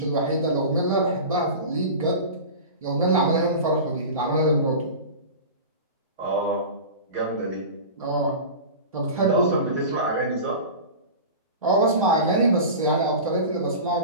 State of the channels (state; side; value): inverted; both; correlation -0.31